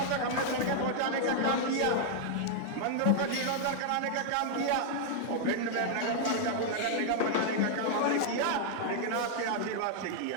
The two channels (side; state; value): both; different; correlation -0.01